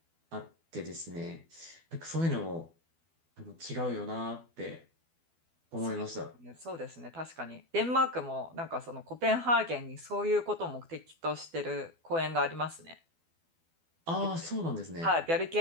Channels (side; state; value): left; late; 12 ms